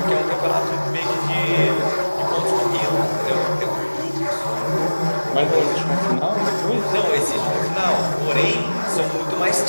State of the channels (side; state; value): both; inverted; correlation -1.00